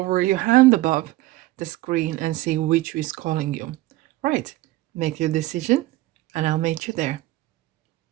your hand above the screen and see which is calling you. Right, make your decision and I'll meet you there.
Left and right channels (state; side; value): quieter; left; 17.5 dB